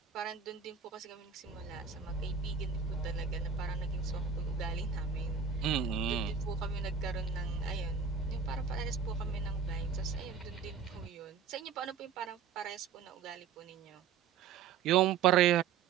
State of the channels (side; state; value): left; quieter; 6.7 dB